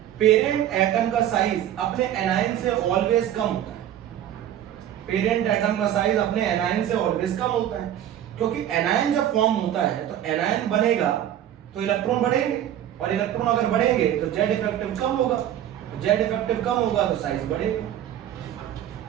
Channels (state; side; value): quieter; left; 11.2 dB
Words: पेरेंट एटम का साइज अपने एनायन से ऑलवेज कम होता है। पेरेंट एटम का साइज अपने एनायन से ऑलवेज कम होता है, क्योंकि एनायन जब फॉर्म होता है तो एनायन बनेगा तो इलेक्ट्रॉन बढ़ेंगे, और इलेक्ट्रॉन अगर बढ़ेंगे तो जेड इफेक्टिव कम होगा, जेड इफेक्टिव कम होगा तो साइज बढ़ेगा।